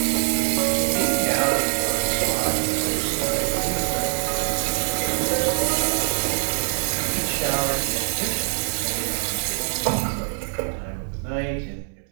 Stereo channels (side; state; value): left; silent; 63 dB below the other